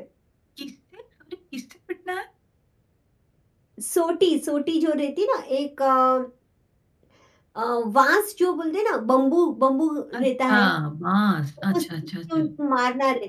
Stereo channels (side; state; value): both; identical; correlation 1.00